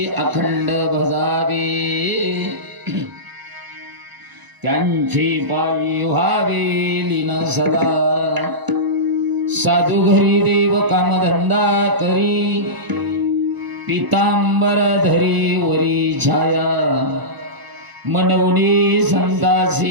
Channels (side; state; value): left; late; 1.0 ms